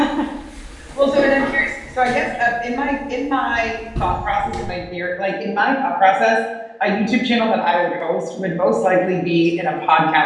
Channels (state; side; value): identical; both; correlation 1.00